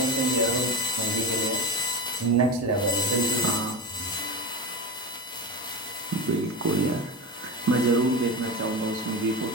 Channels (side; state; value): both; normal; correlation 0.24